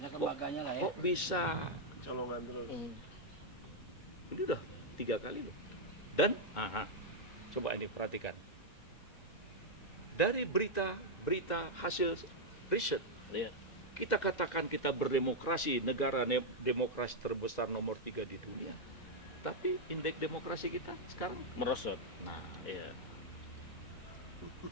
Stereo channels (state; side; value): late; right; 2.0 ms